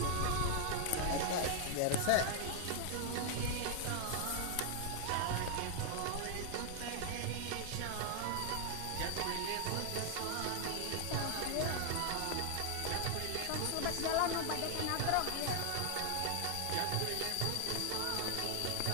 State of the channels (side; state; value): both; different; correlation 0.00